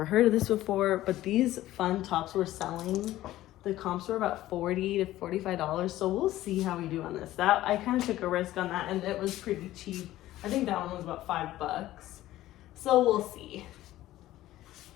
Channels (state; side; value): quieter; right; 15.0 dB